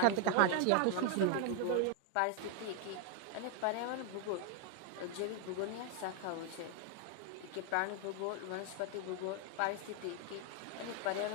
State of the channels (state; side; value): different; both; correlation 0.01